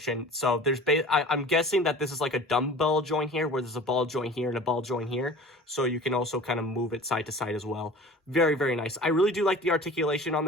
So there's I'm guessing that this is like a dumbbell joint here, where there's a ball joint here and a ball joint here. So you can also kind of move it side to side as well. Very, very nice. I really do like the articulation on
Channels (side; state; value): both; normal; correlation 0.42